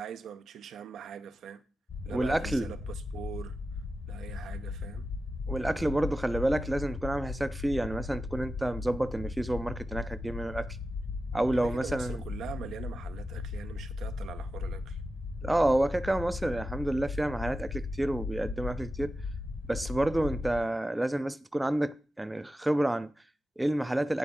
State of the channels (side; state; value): both; normal; correlation 0.92